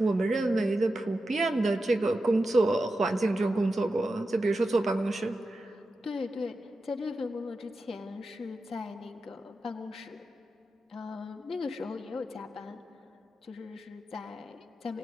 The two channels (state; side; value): normal; both; correlation 0.91